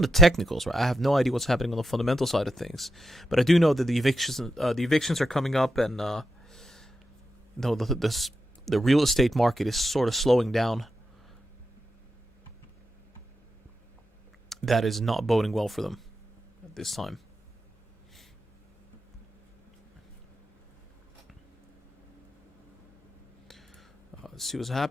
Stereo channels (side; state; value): both; normal; correlation 0.85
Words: the technicals, right? I have no idea what's happening on the fundamental side of things, but I do know that the evictions are coming up, and the real estate market is sort of slowing down. That is not boding well for them at this time. Let's see what's